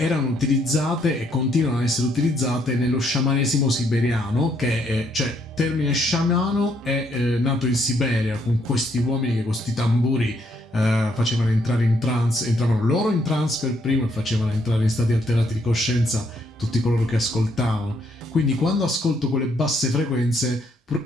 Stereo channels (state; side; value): normal; both; correlation 0.71